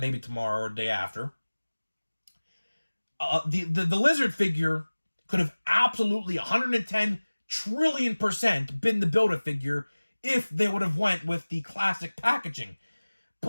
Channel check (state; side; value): inverted; both; correlation -1.00